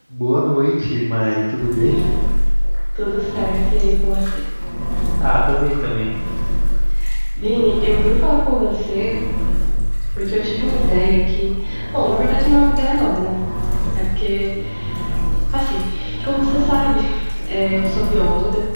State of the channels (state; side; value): inverted; both; correlation -1.00